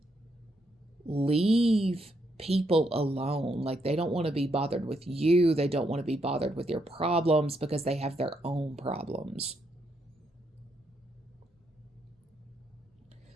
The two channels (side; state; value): both; normal; correlation 0.77